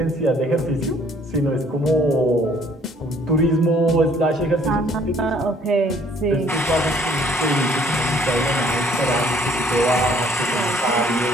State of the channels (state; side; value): normal; both; correlation 0.60